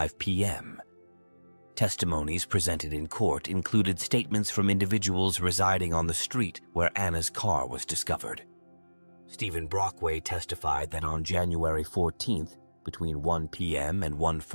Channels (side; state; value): both; inverted; correlation -1.00